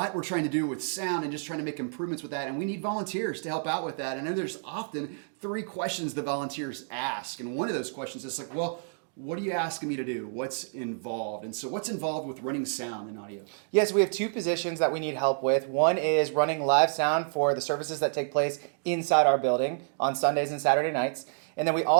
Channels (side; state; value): left; silent; digital silence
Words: we're trying to do with sound and just trying to make improvements with that, and we need volunteers to help out with that. And then there's often 3 questions the volunteers ask, and one of those questions is like, well, what are you asking me to do? What's involved? And so what's involved with running sound and audio? Yes, we have 2 positions that we need help with. One is running live sound for the services that take place inside our building on Sundays and Saturday nights. And then we